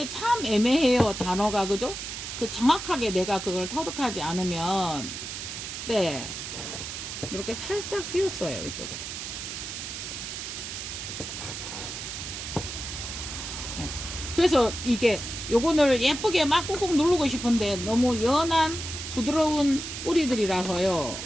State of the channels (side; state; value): right; noise; hiss, 7 dB below the sound